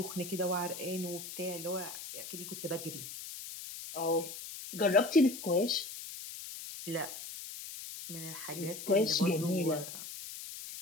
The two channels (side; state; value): left; noise; hiss, 10 dB below the sound